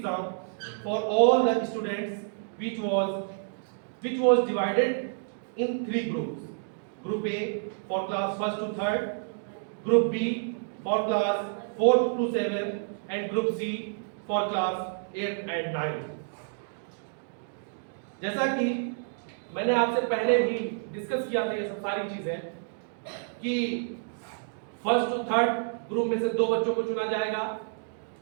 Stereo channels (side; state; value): left; silent; digital silence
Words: for all the students, which was divided in three groups. Group A for class 1st to 3rd, Group B for class 4th to 7th, and Group C for class 8th and 9th. जैसा कि मैंने आपसे पहले भी discuss किया था ये सब सारी चीजें कि 1st to 3rd ग्रुप में से 2 बच्चों को चुना जाएगा